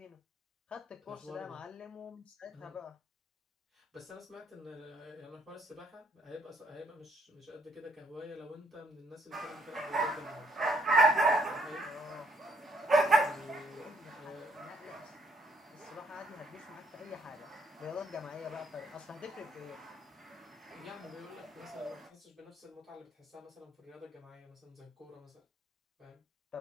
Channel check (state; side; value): normal; both; correlation 0.67